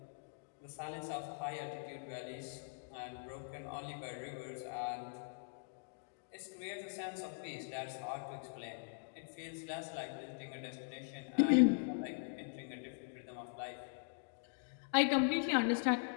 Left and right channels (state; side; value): silent; right; digital silence